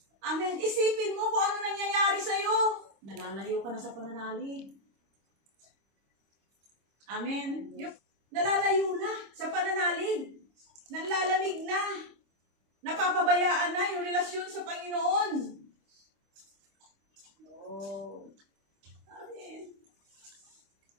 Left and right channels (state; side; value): late; left; 25 ms